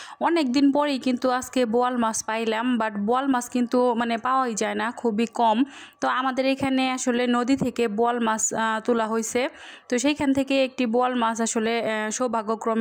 অনেক দিন পরেই কিন্তু আজকে বোয়াল মাছ পাইলাম, বাট বোয়াল মাছ কিন্তু পাওয়াই যায় না, খুবই কম। তো আমাদের এখানে আসলে নদী থেকে বোয়াল মাছ তোলা হয়েছে। তো সেইখান থেকে একটি বোয়াল মাছ আসলে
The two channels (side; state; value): both; identical; correlation 1.00